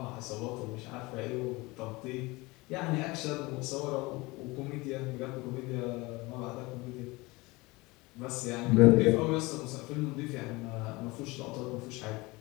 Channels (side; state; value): right; quieter; 23.1 dB